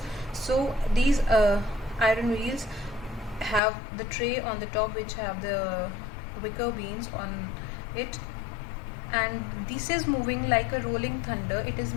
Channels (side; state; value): right; drops out; at 3.6 s